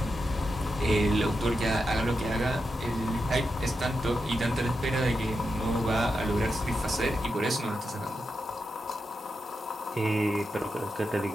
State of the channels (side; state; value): both; normal; correlation 0.87